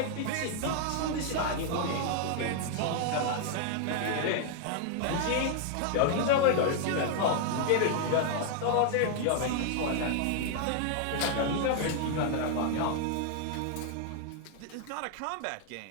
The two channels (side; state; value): both; different; correlation 0.00